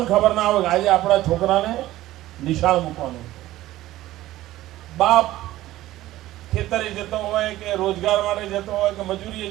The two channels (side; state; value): left; quieter; 15.6 dB